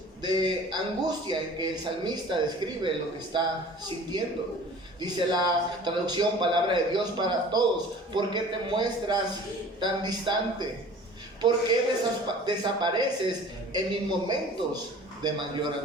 de angustia en que el salmista describe lo que está sintiendo. Dice la traducción Palabra de Dios para Todos: ¿por qué te muestras tan distante? ¿Por qué desapareces en mis momentos de mayor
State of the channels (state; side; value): normal; both; correlation 0.45